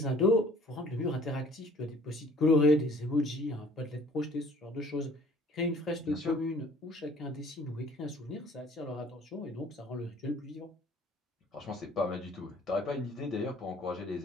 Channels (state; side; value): normal; both; correlation 0.54